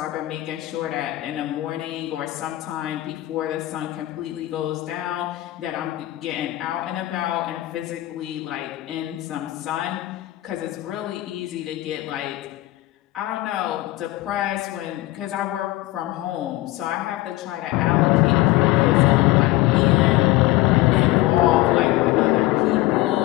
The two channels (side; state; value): right; quieter; 17.4 dB